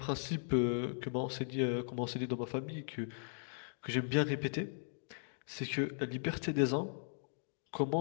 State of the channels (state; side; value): silent; right; digital silence